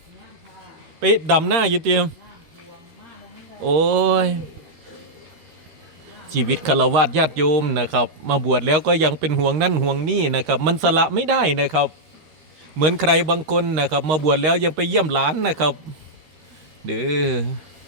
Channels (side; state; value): left; late; 13 ms